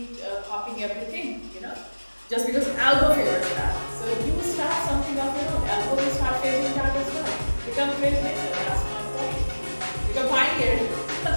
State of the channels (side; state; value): both; inverted; correlation -1.00